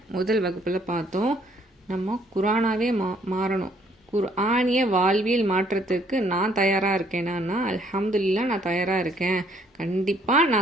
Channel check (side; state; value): both; normal; correlation 0.65